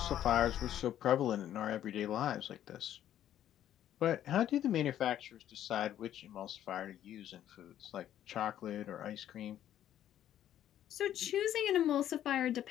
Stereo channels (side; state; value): right; quieter; 11.3 dB